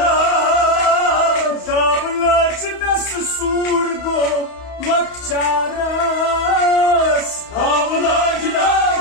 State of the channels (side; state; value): right; late; 31 ms